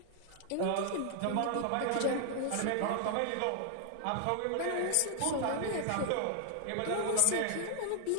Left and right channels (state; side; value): different; both; correlation 0.00